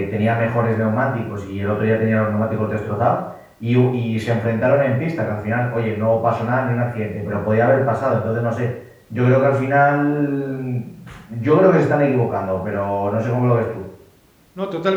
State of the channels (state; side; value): identical; both; correlation 1.00